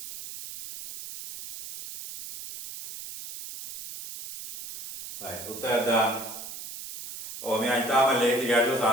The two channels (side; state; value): right; noise; hiss, 11 dB below the sound